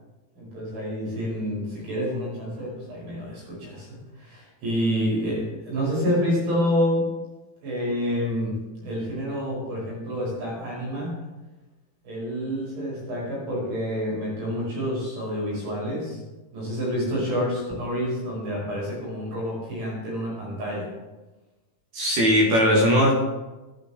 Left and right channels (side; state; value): left; late; 18 ms